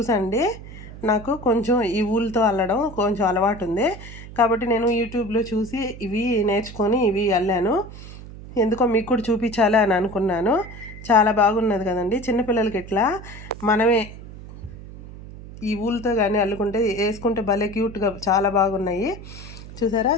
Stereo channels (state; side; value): noise; right; hum, 14 dB below the sound